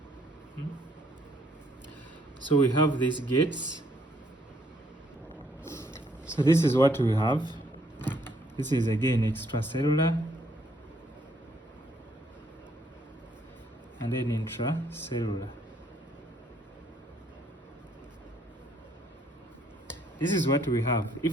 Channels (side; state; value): both; normal; correlation 0.68